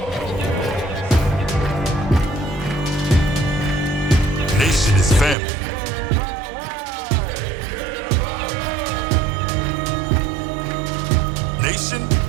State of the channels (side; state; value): left; drops out; at 5.4 s